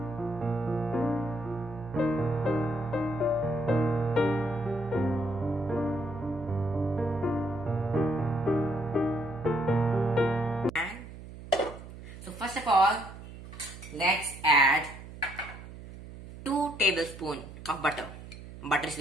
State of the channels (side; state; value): right; noise; hum, 14 dB below the sound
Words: first of all, let's add 2 tablespoons of butter. Butter is